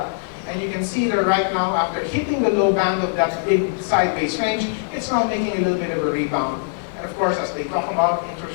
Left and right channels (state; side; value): silent; right; digital silence